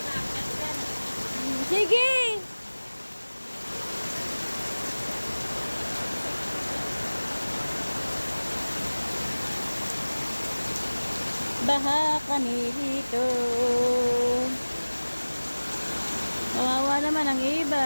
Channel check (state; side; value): inverted; both; correlation -1.00